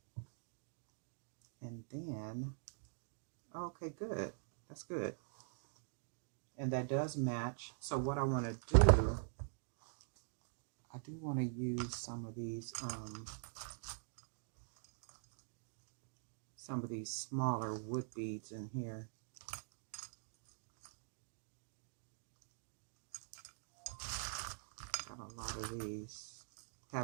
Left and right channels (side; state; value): left; silent; digital silence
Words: And then, okay, good. That's good. And that does match. So what I want to do, I do want to use some of these smaller wood beads in here. Got a lot of these.